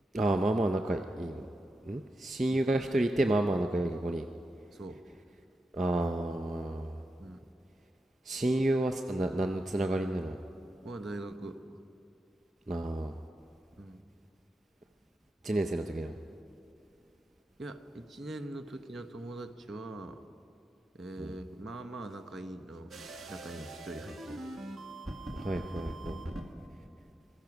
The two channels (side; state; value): both; normal; correlation 0.87